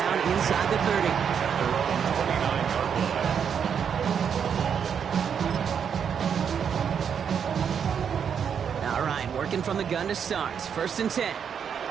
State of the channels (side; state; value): left; quieter; 7.5 dB